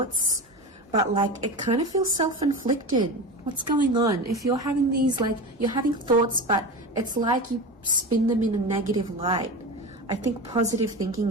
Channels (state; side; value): normal; both; correlation 0.26